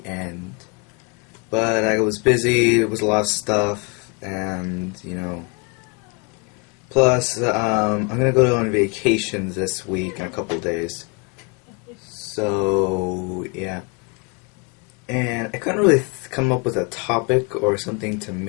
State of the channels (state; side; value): quieter; right; 29.6 dB